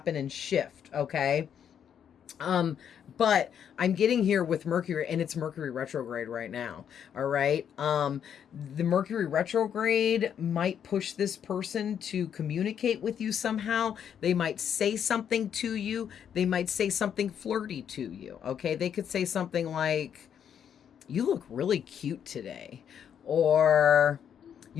and shift. Okay. But I'm getting here with Mercury, and it's Mercury retrograde right now. All right. The Mercury retrograde might push this person to communicate with you somehow. They might say something to you. They might say something flirty to you. Okay. They could say something like, you look really cute today, or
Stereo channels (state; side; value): quieter; right; 8.5 dB